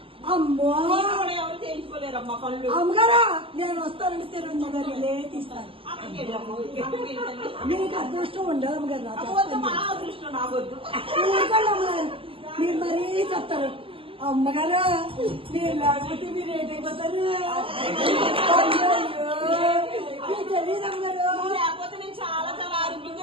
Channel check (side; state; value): left; late; 0.26 ms